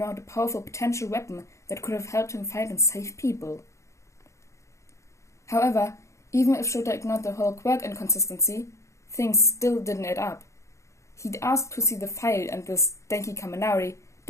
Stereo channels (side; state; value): right; late; 0.14 ms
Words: a powerful potential weapon that could have helped him fight and save people? However, even if Shota ignored the whole quirk inconsistency, things still didn't add up. He'd asked to see the file, and this Denki Kaminari